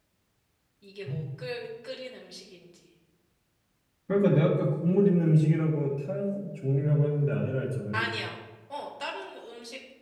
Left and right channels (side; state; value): both; identical; correlation 1.00